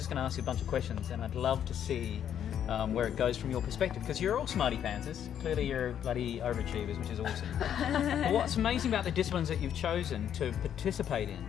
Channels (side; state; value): right; quieter; 9.5 dB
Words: going to ask you a bunch of questions, and I'd love to see where it goes from your perspective, because you're all smarty pantsers. Clearly you're bloody overachievers, which is awesome. But what's amazing about the disciplines that you've chosen to participate in,